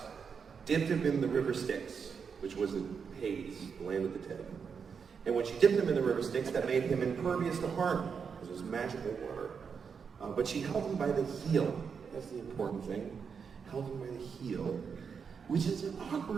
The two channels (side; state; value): left; quieter; 6.2 dB